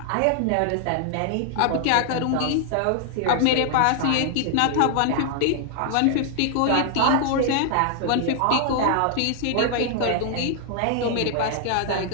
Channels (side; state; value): both; different; correlation 0.00